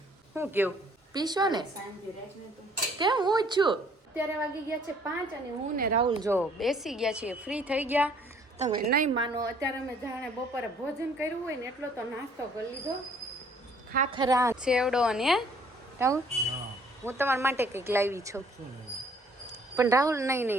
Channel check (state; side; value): normal; both; correlation 0.60